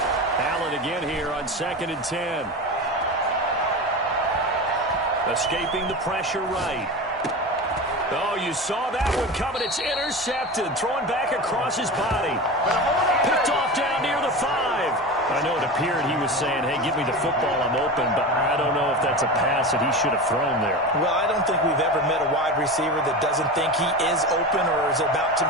Allen again here on 2nd and 10. Escaping the pressure right. Oh, you saw that one coming. It's intercepted. Throwing back across his body. Picked off down near the 5. I know it appeared he was saying, hey, give me the football, I'm open, but I don't know if that's a pass that he should have thrown there. Well, I don't think we've ever met a wide receiver that doesn't think he is open or is about to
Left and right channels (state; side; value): normal; both; correlation 0.27